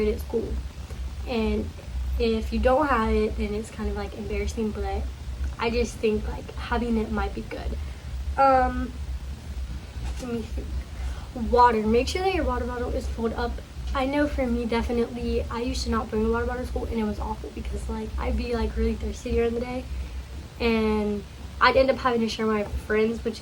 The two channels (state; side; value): identical; both; correlation 1.00